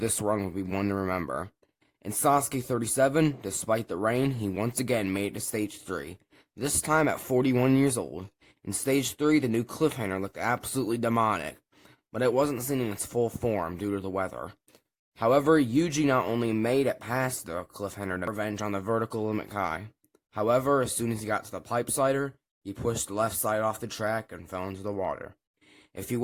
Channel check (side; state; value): both; identical; correlation 1.00